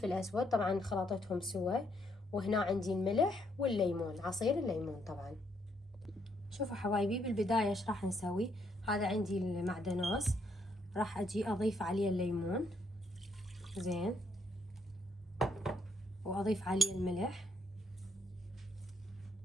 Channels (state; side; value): normal; both; correlation 0.72